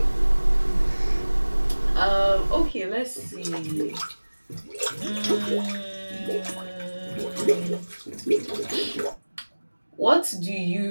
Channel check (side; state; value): both; inverted; correlation -1.00